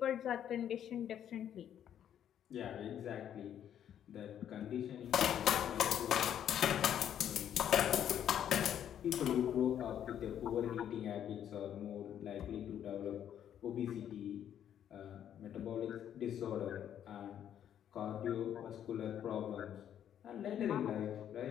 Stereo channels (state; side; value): quieter; right; 9.9 dB